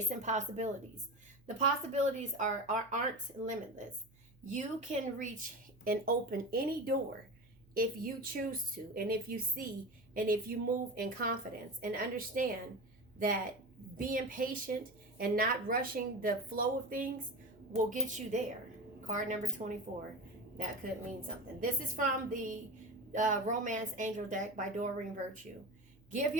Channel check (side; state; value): right; noise; hum, 28 dB below the sound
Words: possibilities. The possibilities aren't limitless. You can reach and open any door if you choose to, and if you see, and if you move in confidence and understand that being patient and not rushing the flow of things will get you there. Card number 24. That could mean something. This is from the Romance Angel deck by Doreen Virtue. Give